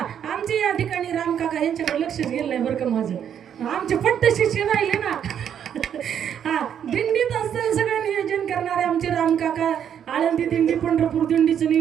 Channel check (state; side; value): quieter; left; 8.9 dB